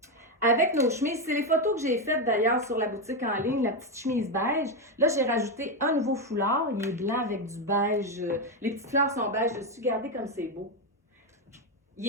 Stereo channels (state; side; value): normal; both; correlation 0.08